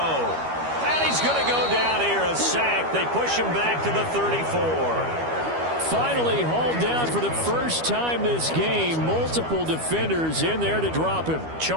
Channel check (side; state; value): left; late; 12 ms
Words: he's going to go down here, a sack. They push him back to the 34. Finally hauled down for the first time this game. Multiple defenders in there to drop him.